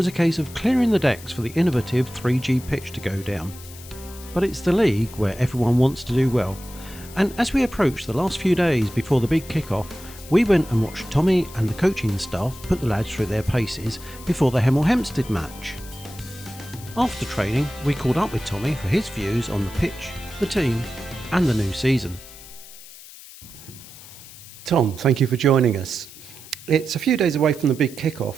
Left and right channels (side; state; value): left; noise; hiss, 17 dB below the sound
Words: a case of clearing the decks for the innovative 3G pitch to go down. But it's the league where everyone wants to do well, and as we approached the last few days before the big kick-off, we went and watched Tommy and the coaching staff put the lads through their paces before the Hemel Hempsted match. After training, we caught up with Tommy for his views on the pitch, the team and the new season. Tom, thank you for joining us. It's a few days away from the big